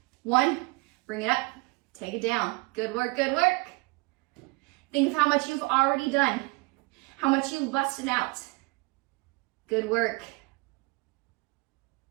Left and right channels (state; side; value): quieter; left; 26.6 dB